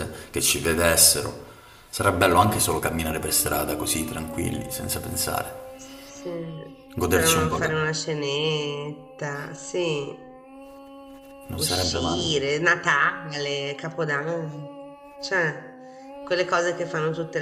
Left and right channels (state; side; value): identical; both; correlation 1.00